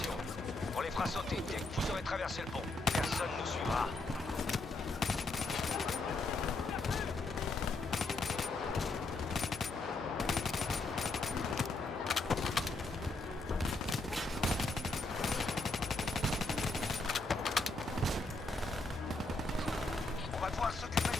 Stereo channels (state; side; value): quieter; right; 3.1 dB